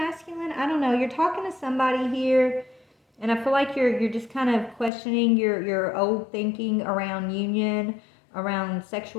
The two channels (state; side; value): drops out; right; at 4.9 s